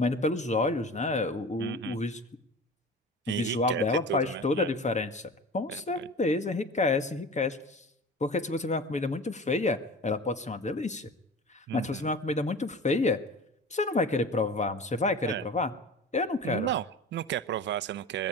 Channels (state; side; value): normal; both; correlation 0.36